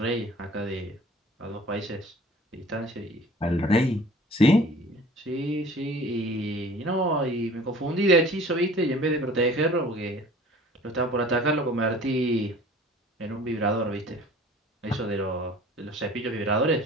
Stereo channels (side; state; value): both; normal; correlation 0.47